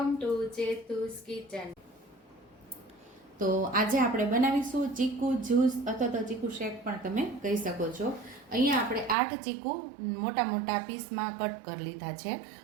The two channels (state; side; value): drops out; left; at 9.2 s